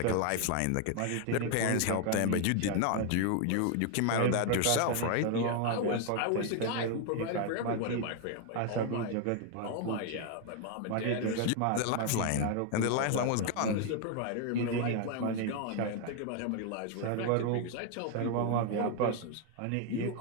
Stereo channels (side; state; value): both; different; correlation 0.01